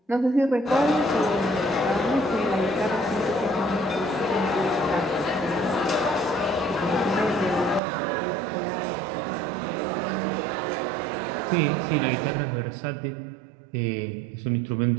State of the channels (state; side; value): drops out; left; at 7.8 s